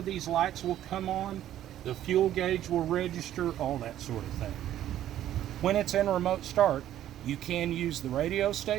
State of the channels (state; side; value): quieter; left; 12.1 dB